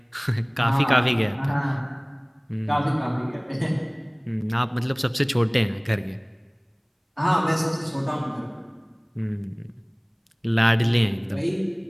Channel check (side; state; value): both; identical; correlation 1.00